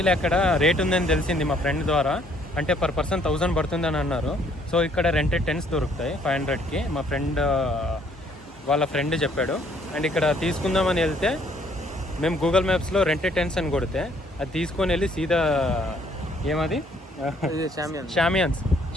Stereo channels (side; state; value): both; normal; correlation 0.64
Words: అక్కడ రేట్ ఉందని తెలిసింది మా ఫ్రెండ్ ద్వారా. అంటే పర్ పర్సన్ 1000 పడుతుందని అన్నారు. సో ఇక్కడ రెంటెడ్ టెంట్స్ దొరుకుతాయి 500కి. మా ఫ్రెండ్ వాళ్ళ ఫ్రెండ్ చెప్పాడు. అండ్ ఇక్కడ తీసుకుందామని వెళ్తే మేము గూగుల్ మ్యాప్స్లో రెంటెడ్ టెంట్స్ అని కొడితే అది తీసుకొని వెళ్ళి సీదా ఏమది షామియాన్స్